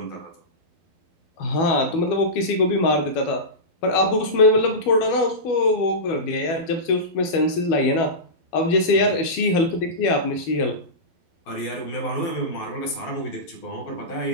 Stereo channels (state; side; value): late; right; 12 ms